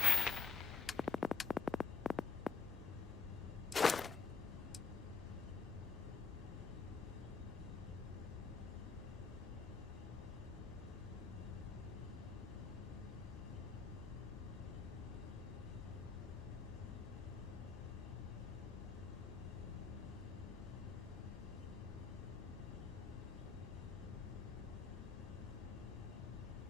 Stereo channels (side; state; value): right; quieter; 5.1 dB